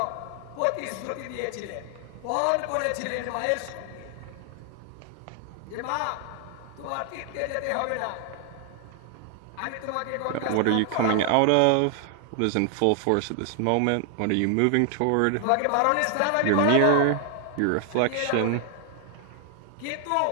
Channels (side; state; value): both; different; correlation 0.00